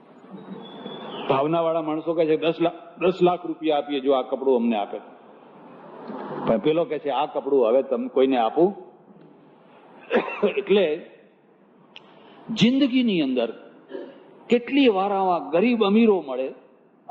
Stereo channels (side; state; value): both; identical; correlation 1.00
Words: ભાવના વાળા માણસો કહે છે 10 લાખ રૂપિયા આપીએ જો આ કપડું અમને આપે. પણ પેલો કહે છે આ કપડું હવે તમે કોઈને આપું. એટલે જિંદગીની અંદર કેટલી વાર આવા ગરીબ અમીરો મળે